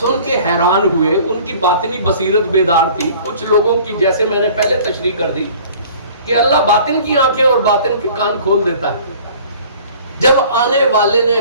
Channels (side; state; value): both; inverted; correlation -0.49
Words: کے حیران ہوئے. ان کی باطنی بصیرت بیدار تھی. کچھ لوگوں کی جیسے میں نے پہلے تشریح کر دی کہ اللہ باطن کی آنکھیں اور باطن کے کان کھول دیتا ہے. جب آنے والے نے